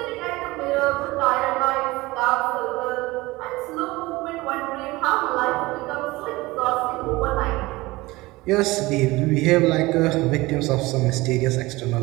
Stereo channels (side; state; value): left; quieter; 20.7 dB